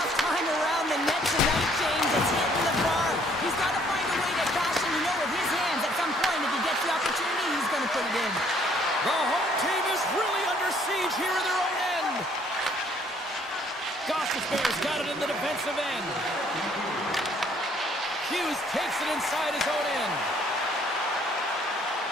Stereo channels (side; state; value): both; normal; correlation 0.63